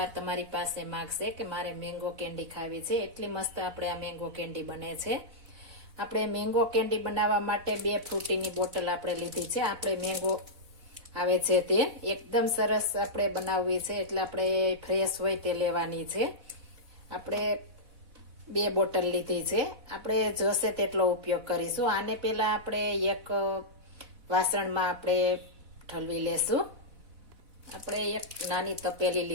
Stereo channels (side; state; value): left; late; 4.0 ms